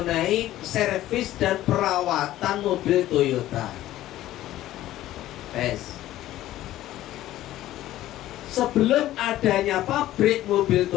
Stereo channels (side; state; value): right; quieter; 14.4 dB